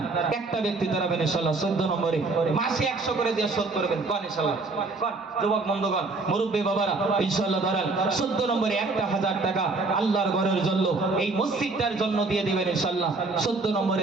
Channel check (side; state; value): left; quieter; 3.6 dB